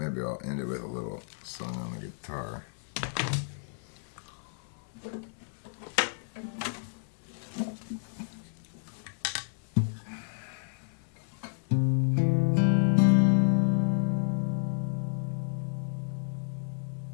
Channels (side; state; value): right; silent; 57 dB below the other